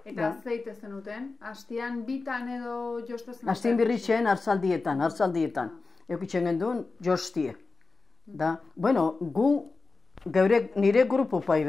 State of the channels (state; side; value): quieter; right; 3.9 dB